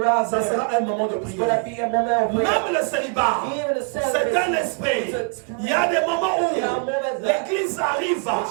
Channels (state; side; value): quieter; left; 38.9 dB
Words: ça sera un moment de prière. Même le célibat, c'est un esprit. Il y a des moments où l'église arrive